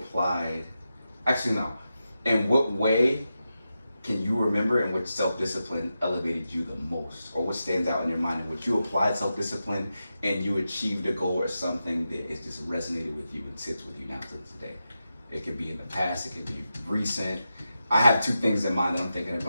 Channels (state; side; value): inverted; both; correlation -0.90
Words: Actually, no. In what way can you remember in which self-discipline elevated you the most, or what stands out in your mind in which you applied self-discipline and you achieved a goal or something that is just resonated with you and sits with you now to this day? It could be in the past, it could be recent. I have two things in mind that I'm thinking